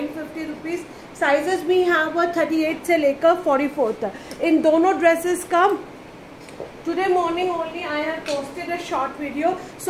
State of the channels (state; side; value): identical; both; correlation 1.00